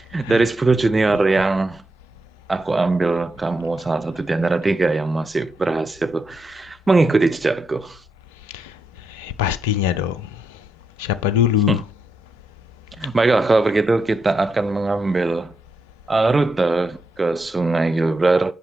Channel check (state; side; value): normal; both; correlation 0.83